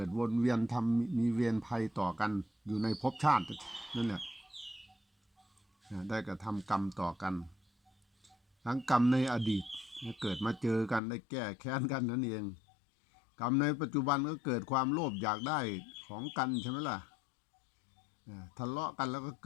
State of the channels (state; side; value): drops out; right; at 11.0 s